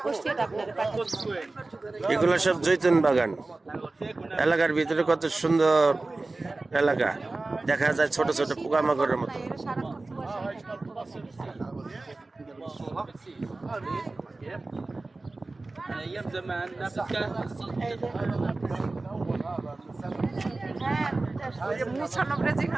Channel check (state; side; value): quieter; left; 3.3 dB